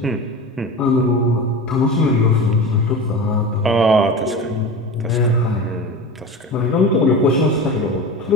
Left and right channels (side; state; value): both; normal; correlation 0.30